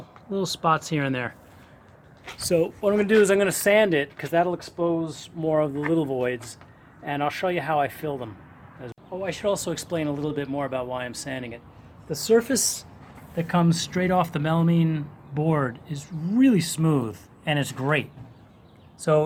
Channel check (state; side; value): identical; both; correlation 1.00